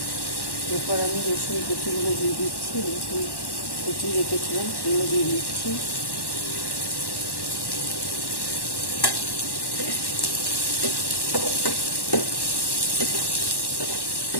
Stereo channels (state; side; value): late; right; 1.1 ms